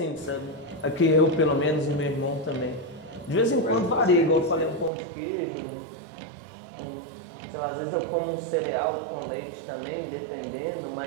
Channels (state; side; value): drops out; left; at 4.9 s